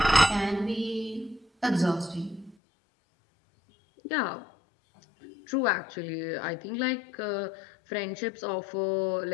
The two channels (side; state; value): right; drops out; at 2.6 s